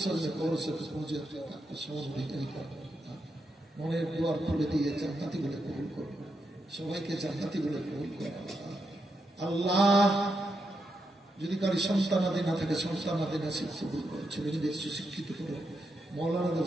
স্বজনের কবরের সাথে পৌঁছে সমান অধিকারী করো। মনের দুয়ার খুলে দিয়ে জান্নাতি বলে কবুল করো, সবাইকে জান্নাতি বলে কবুল করো। আল্লাহ যদি কারি সন্তানাদি না থাকে সন্তানাদি নসিব কবুল করো, ছেলেমেয়েদের সুশিক্ষিত করো। মৌলানাদের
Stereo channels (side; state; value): both; normal; correlation 0.84